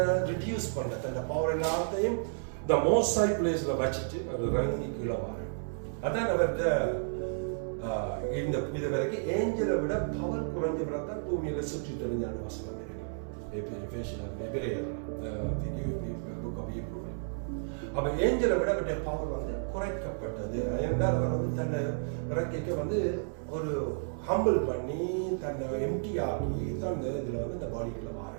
ரிடியூஸ் பண்ண, தன்னை பவர் எல்லாத்தையும் இந்த மோஸ்ட் ஹை பிளேஸ்ல வச்சுட்டு அவர் ரங்கி கீழே வர. அதான் அவர்கிட்ட இந்த இது வரைக்கும் ஏஞ்சலை விட பவர் குறைஞ்ச பிறகு பூமியில சுற்றி தெரிஞ்சான வசனம் இருக்கு. அப்ப ஏஞ்சலை விட அவருடைய பவர் வந்து குறைக்கப்பட்டது. என்றால் அவர் வந்து தன்னை இறங்கிக்க வந்து ஒரு ஹம்பிள் பண்ணி தன்னை எம்டி ஆக்கி தான் இதுல வந்து இந்த பாடிக்குள்ள மாற.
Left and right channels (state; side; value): silent; left; 56 dB below the other